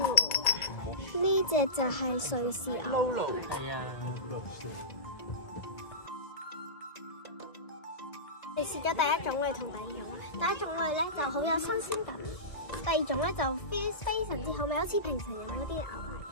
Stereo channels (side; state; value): right; late; 1.8 ms